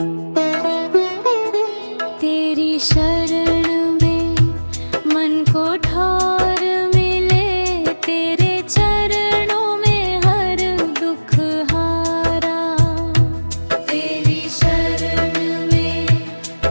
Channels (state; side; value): inverted; both; correlation -1.00